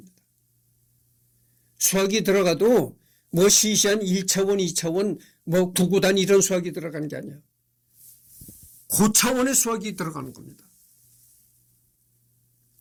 수학이 들어가도 뭐 시시한 1차원, 2차원, 뭐 구구단 이런 수학이 들어가는 게 아니야. 고차원의 수학이 들어가는 겁니다.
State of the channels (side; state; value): both; identical; correlation 1.00